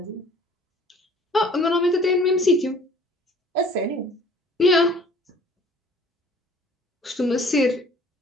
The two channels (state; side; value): normal; both; correlation 0.53